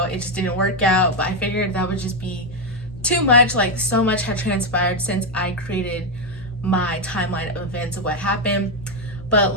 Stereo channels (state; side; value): normal; both; correlation 0.04